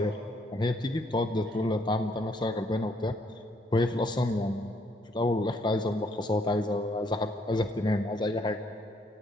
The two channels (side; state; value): both; normal; correlation 0.69